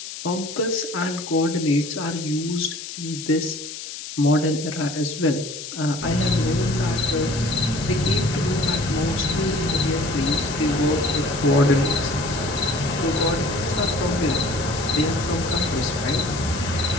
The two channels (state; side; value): noise; left; hiss, 10 dB below the sound